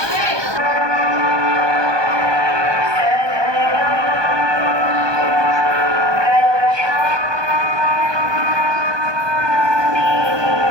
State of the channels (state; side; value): late; left; 1.2 ms